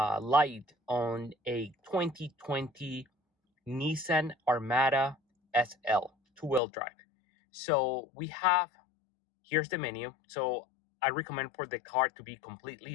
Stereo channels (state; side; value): drops out; right; at 6.6 s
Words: on a 2020 Nissan Armada SL two-wheel drive. So here's the menu. So I recommend for the car to be